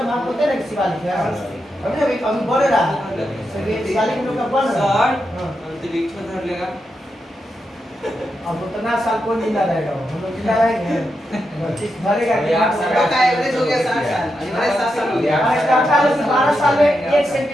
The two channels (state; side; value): normal; both; correlation 0.86